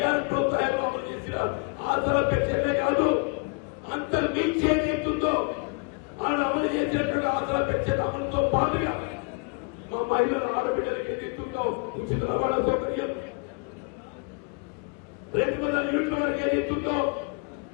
ప్రోత్సాహం అమలు చేసిన ఆసరా పెన్షన్లే కాదు అంత మించి ఏదైతుందో ఆయన అమలు చేసినటువంటి ఆసరా పెన్షన్ అమలుతో పాటుగా మా మహిళల ఆడబిడ్డలకు ఏదైతుందో ఉచిత రవాణా సౌకర్యం 200 యూనిట్ల వరకు ఏదైతుందో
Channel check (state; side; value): quieter; right; 33.6 dB